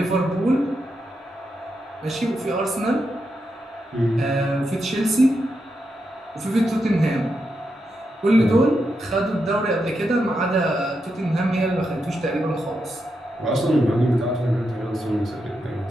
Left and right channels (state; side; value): normal; both; correlation 0.85